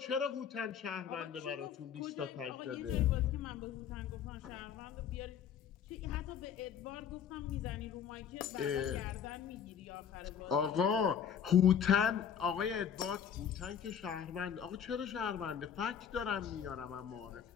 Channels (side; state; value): right; quieter; 8.1 dB